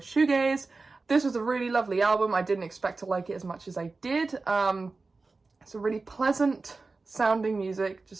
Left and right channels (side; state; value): left; quieter; 3.8 dB